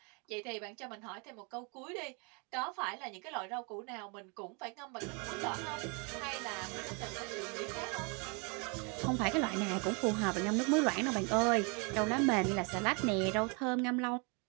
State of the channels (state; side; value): quieter; left; 33.1 dB